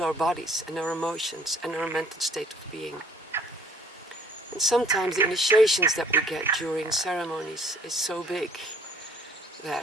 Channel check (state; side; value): normal; both; correlation 0.58